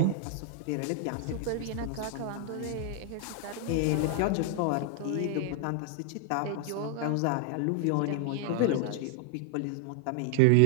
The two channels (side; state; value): both; different; correlation 0.00